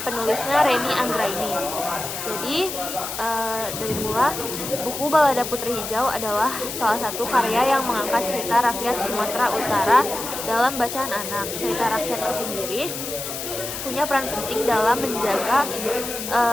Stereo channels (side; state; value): left; noise; hiss, 6 dB below the sound